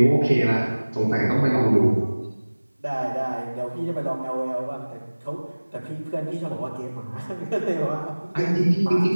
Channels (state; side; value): inverted; both; correlation -1.00